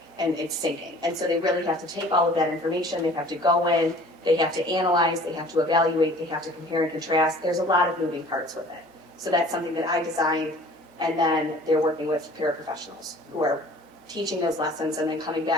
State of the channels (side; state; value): both; normal; correlation 0.49